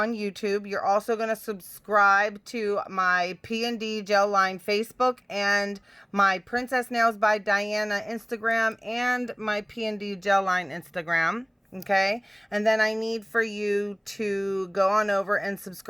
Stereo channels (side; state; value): both; identical; correlation 1.00